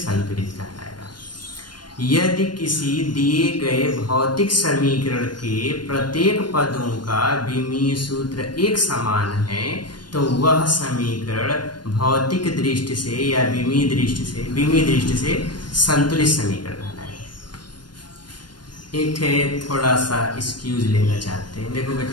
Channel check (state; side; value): late; right; 0.71 ms